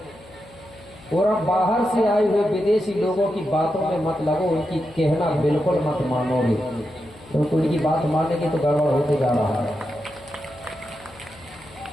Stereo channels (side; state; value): left; noise; hum, 23 dB below the sound